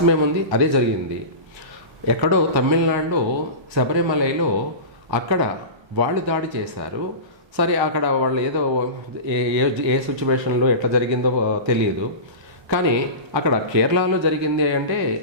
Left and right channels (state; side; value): late; left; 1.3 ms